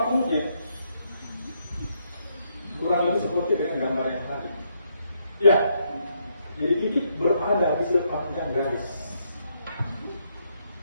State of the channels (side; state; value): both; inverted; correlation -0.76